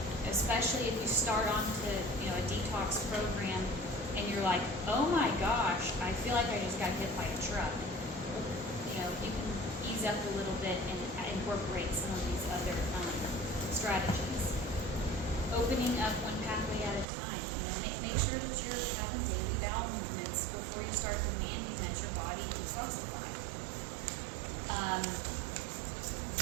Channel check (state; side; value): drops out; left; at 17.1 s